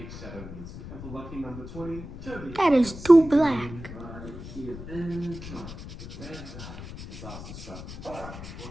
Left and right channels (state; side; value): noise; left; rumble, 12 dB below the sound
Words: shadow music. And for lucky number 20, Kirby. That is too black. Here and disaster strap.